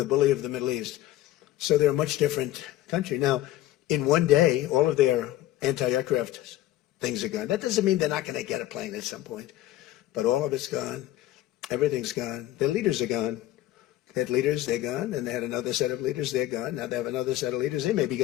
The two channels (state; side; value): quieter; right; 14.5 dB